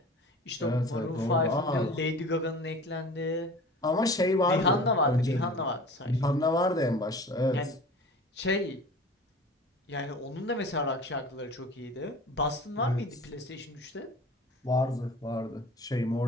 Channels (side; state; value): both; normal; correlation 0.40